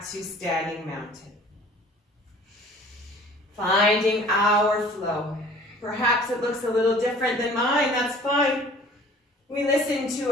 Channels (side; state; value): both; normal; correlation 0.49